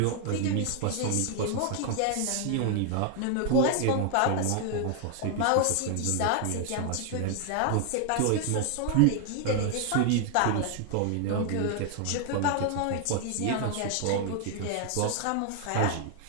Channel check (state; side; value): different; both; correlation 0.00